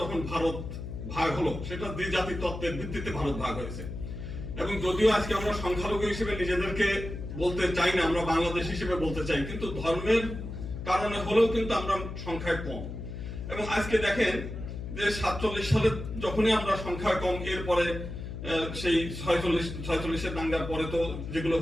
যখন ভারত ভাগ হলো, সেটা দ্বিজাতি তত্ত্বের ভিত্তিতে ভারত ভাগ হয়েছে। এবং যদিও আজকে আমরা সংখ্যালঘু হিসেবে নিজেদেরকে বলতে চাই না, আমরা বাংলাদেশ হিসেবে বলতে চাই, কিন্তু ধর্মের কারণে হলেও কিন্তু আমরা সংখ্যায় কম। এবং আজকে দেখেন যে 47 সালে যখনই আমরা সংখ্যায় কম, এরপরে সেই 46-46 দাঙ্গার পরে তো যেগুলো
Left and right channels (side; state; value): left; noise; hum, 8 dB below the sound